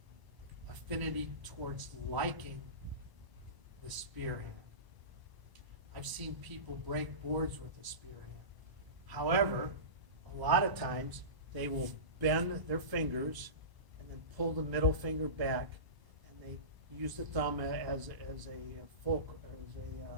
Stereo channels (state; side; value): late; left; 1.0 ms